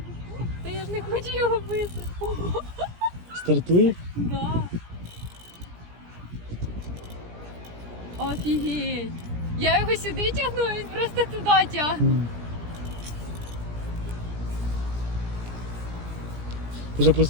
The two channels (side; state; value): left; late; 17 ms